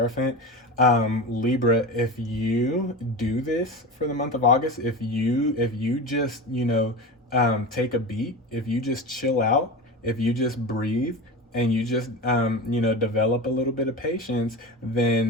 Libra, if you do this for the month of August, if you just take a beat, if you just chill out, if you just breathe, and you just develop a little bit of patience,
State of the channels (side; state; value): both; normal; correlation 0.26